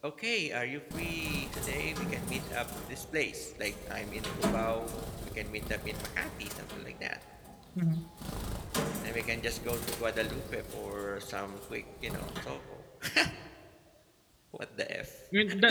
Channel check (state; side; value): identical; both; correlation 1.00